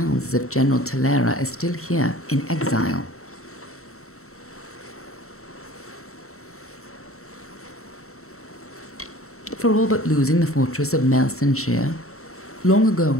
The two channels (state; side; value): late; right; 0.63 ms